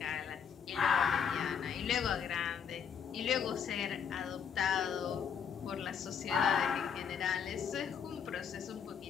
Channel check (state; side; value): quieter; right; 7.3 dB